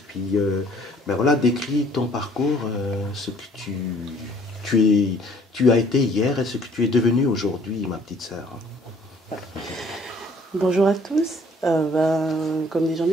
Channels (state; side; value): normal; both; correlation 0.58